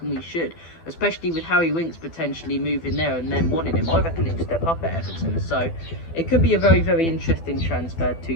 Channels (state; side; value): late; right; 12 ms